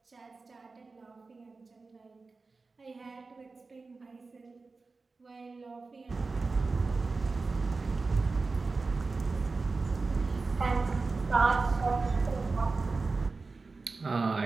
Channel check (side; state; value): left; quieter; 4.0 dB